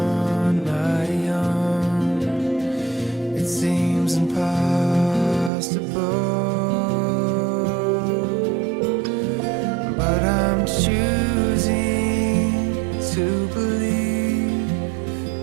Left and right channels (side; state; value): left; drops out; at 5.5 s